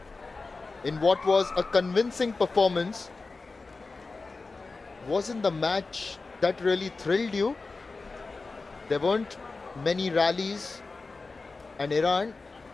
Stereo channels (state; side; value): quieter; right; 3.9 dB